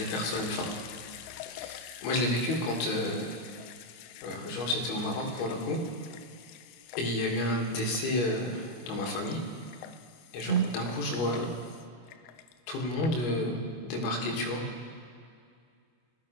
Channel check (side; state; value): right; late; 25 ms